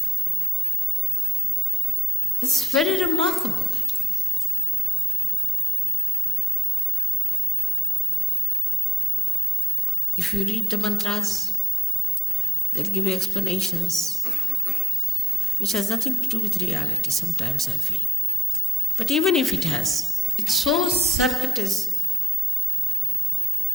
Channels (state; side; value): normal; both; correlation 0.83